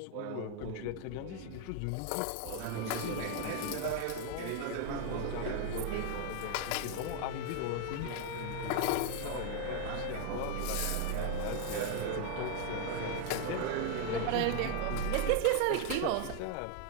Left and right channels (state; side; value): different; both; correlation 0.00